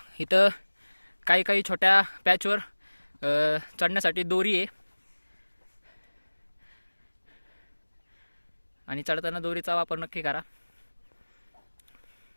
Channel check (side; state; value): both; inverted; correlation -1.00